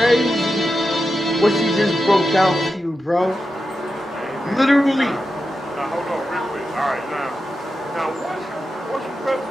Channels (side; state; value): both; normal; correlation 0.90